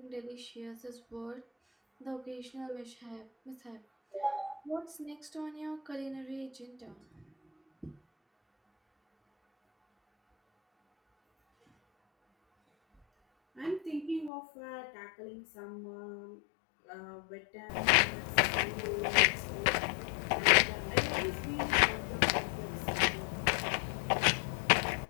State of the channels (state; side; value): drops out; right; at 14.3 s